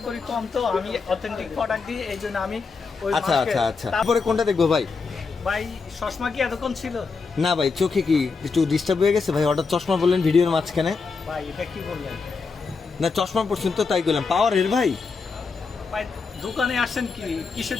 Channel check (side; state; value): right; quieter; 4.7 dB